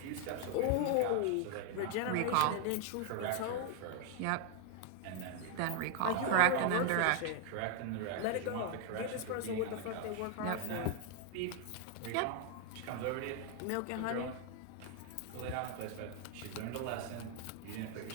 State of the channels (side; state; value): both; different; correlation 0.00